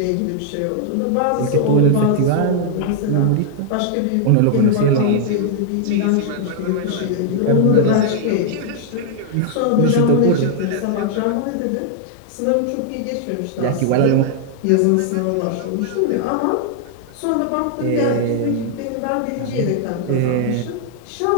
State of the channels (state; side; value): different; both; correlation 0.00